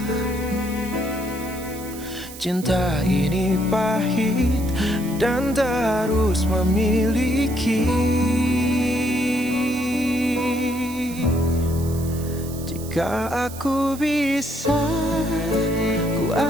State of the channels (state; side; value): noise; right; hiss, 15 dB below the sound